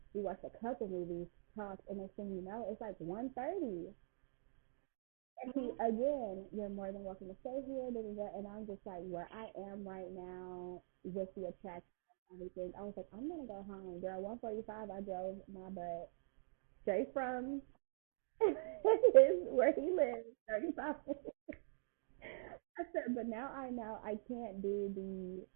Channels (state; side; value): silent; left; digital silence